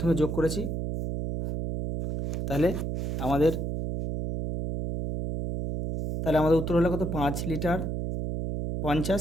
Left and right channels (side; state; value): right; noise; hum, 3 dB below the sound